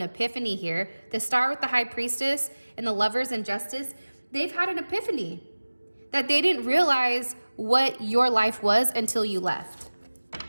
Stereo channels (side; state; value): both; inverted; correlation -1.00